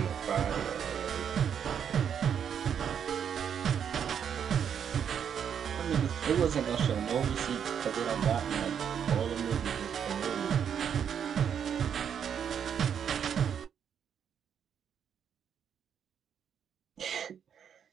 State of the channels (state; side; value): quieter; left; 8.1 dB